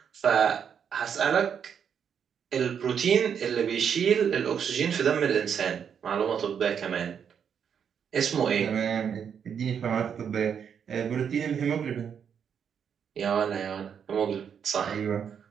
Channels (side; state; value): left; quieter; 7.6 dB